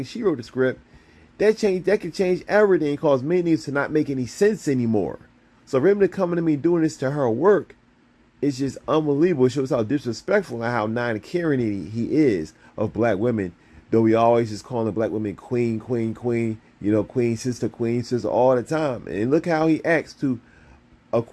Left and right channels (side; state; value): both; identical; correlation 1.00